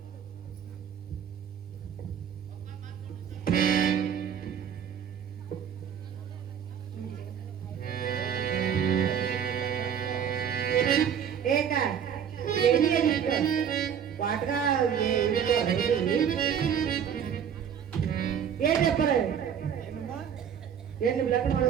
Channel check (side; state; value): left; quieter; 8.3 dB